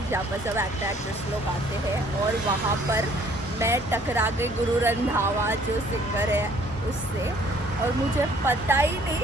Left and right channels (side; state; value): both; normal; correlation 0.59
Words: जहाँ पर सब एक्टर एक्ट्रेस लोग आते हैं, और वहाँ पर मैं टकरा गई गुरु रंधावा जो सिंगर है उससे। और मुझे पता ही